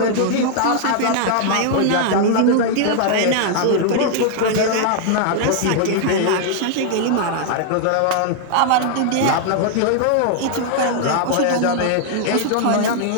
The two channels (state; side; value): different; both; correlation 0.00